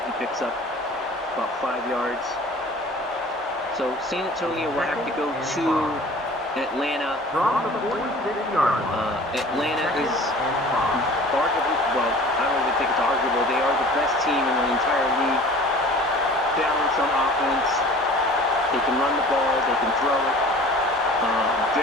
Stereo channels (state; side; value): normal; both; correlation 0.44